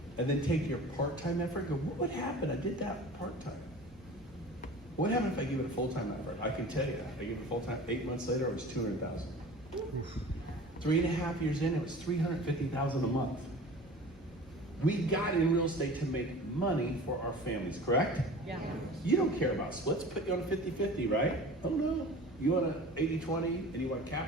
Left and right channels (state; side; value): normal; both; correlation 0.40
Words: And then take your part-time effort and go, what would happen? I did that part-time. What happened if I give it a full-time effort? I can tell you that. I give it full-time, 8 months later, it was 200,000. 3.5 years in, it was 350,000 a month. We got in real estate to make money for our families, correct? Yeah. You don't care about splits, put you on a 50-50, right? Oh no, you want an 80-20 and you want a